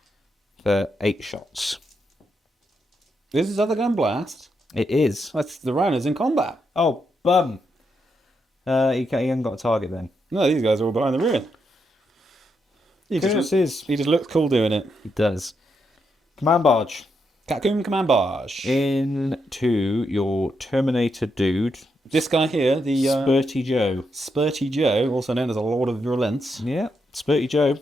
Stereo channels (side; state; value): both; normal; correlation 0.81